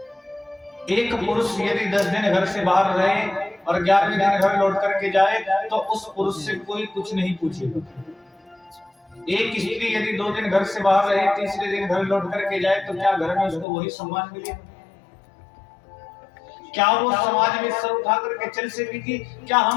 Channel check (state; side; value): drops out; right; at 13.7 s